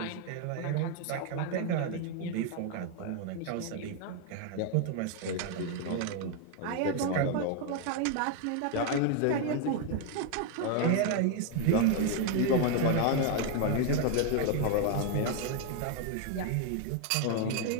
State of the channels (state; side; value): different; both; correlation 0.01